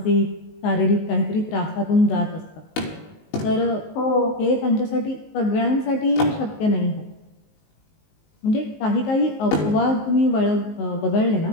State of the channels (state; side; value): late; right; 19 ms